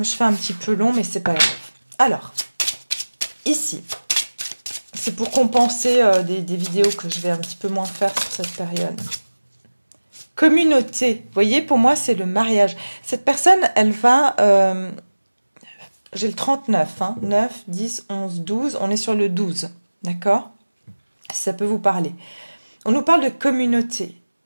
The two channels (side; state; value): both; inverted; correlation -1.00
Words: je fais un petit peu long, mais c'est pas grave. Alors, ici, c'est pour compenser des vidéos que je vais un petit peu moins faire sur cette période. Communauté, vous voyez, pour moi, c'est le mariage. Cette personne, elle va... j'ai le 39, hein, 9, 10, 11, 12. On est sur le 12, d'accord? Si ça peut vous parler. On nous parle de communauté.